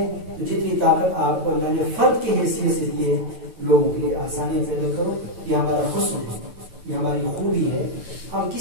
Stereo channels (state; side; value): late; left; 9.1 ms